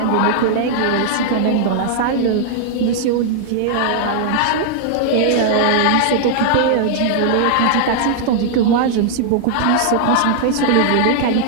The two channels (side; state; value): both; different; correlation -0.01